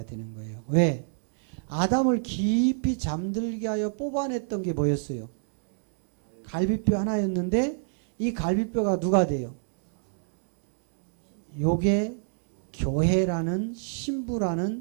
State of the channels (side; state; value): left; silent; digital silence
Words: 되는 거예요. 왜? 아담을 깊이 잠들게 하여 뽑아냈던 게 뭐였어요? 갈비뼈 하나였는데 이 갈비뼈가 누가 돼요? 요게 교회라는